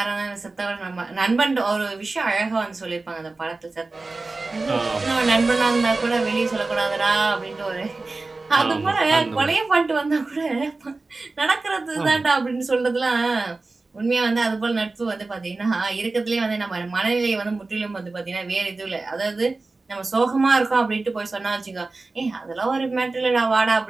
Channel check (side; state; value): left; quieter; 3.5 dB